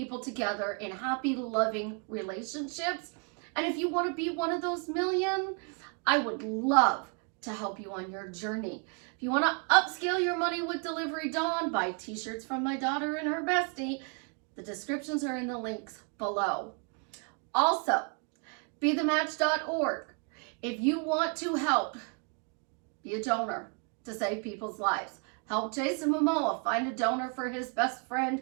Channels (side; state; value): left; quieter; 36.7 dB